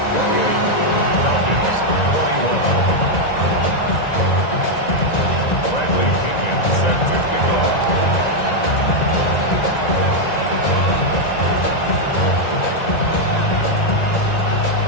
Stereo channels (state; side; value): late; right; 1.9 ms